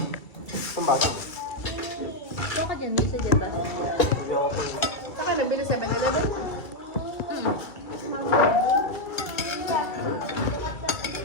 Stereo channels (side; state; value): right; late; 2.3 ms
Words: Pambata. Ito ka dyan, may isa dyan ba? Saka nabili 7-Eleven.